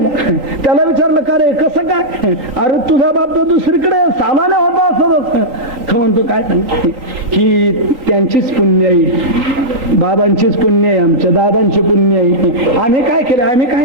त्याला विचारलं, का रे कसं काय? अरे तुझा बाप तर दुसरीकडे सालाने होता असं. तो म्हणतो, काय ही त्यांचीच पुण्य आहे, बाबांचीच पुण्य आहे, आमच्या दादांची पुण्य आहे. आम्ही काय केलं? आम्ही काय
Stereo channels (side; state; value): left; late; 3.5 ms